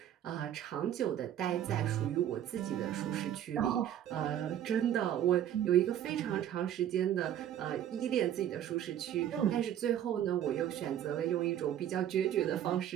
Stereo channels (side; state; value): left; quieter; 10.8 dB